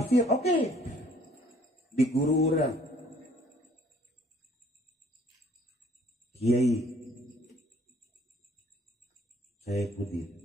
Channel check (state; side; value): normal; both; correlation 0.58